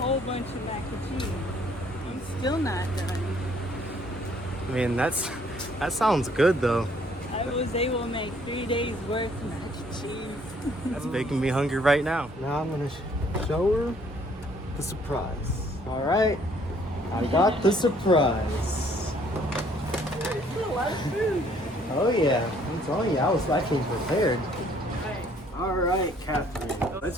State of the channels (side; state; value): both; normal; correlation 0.62